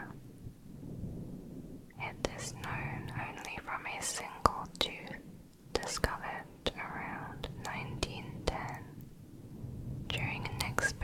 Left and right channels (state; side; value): identical; both; correlation 1.00